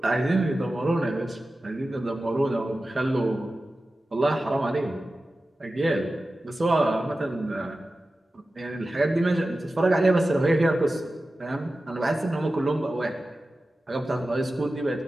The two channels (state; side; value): normal; both; correlation 0.94